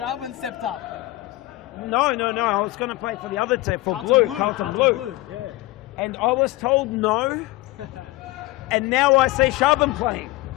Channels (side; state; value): right; quieter; 19.0 dB